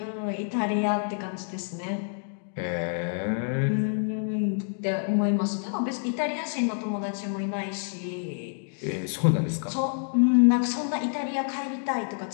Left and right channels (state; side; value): silent; right; 60 dB below the other